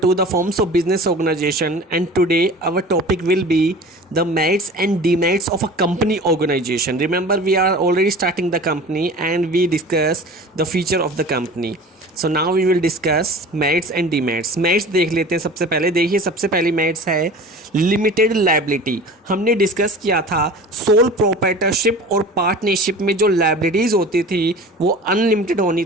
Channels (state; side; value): normal; both; correlation 0.39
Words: the forms of business organization, and today our topic will be the merits and demerits of a company organization. Remember, we are already starting the company and we discuss the feature of the company. So now we will discuss merits and demerits. Merits देख लेते हैं। सबसे पहले देखिए, सबसे पहली merits है limited liability. हमने डिस्कस किया था सोल प्रोप्राइटरशिप और पार्टनरशिप में जो लायबिलिटीज़ होती थी वो अनलिमिटेड